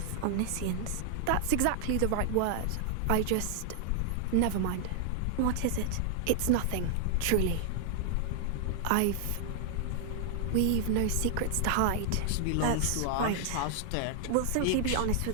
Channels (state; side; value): different; both; correlation 0.00